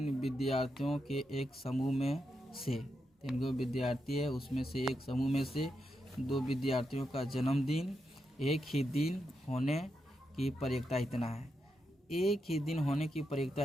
विद्यार्थियों के एक समूह में से 3 विद्यार्थी है, उसमें से एक समूह में से 2 विद्यार्थियों का जन्मदिन एक ही दिन होने की प्रयोक्ता इतना है। एक ही दिन होने की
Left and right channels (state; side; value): normal; both; correlation 0.85